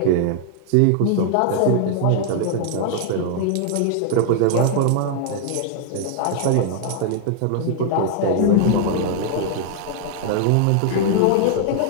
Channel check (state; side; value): different; both; correlation -0.01